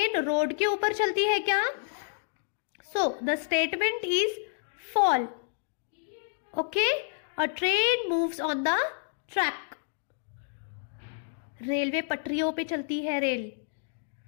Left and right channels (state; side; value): silent; right; digital silence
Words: road के ऊपर चलती है क्या? So the statement is false. Okay, a train moves on the track. Railway पटरियों पे चलती है, रेल